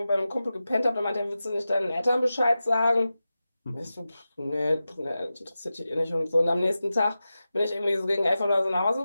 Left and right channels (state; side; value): inverted; both; correlation -0.94